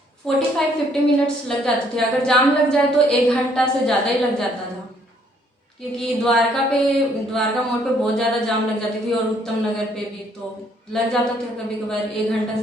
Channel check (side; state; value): both; normal; correlation 0.66